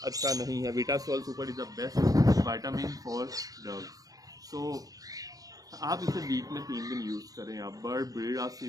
अच्छा नहीं है। Vitasol super is the best vitamin for dove. So आप इसे वीक में 3 दिन यूज़ करें। आप बर्ड ब्रीड ऑफ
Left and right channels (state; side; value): late; left; 0.18 ms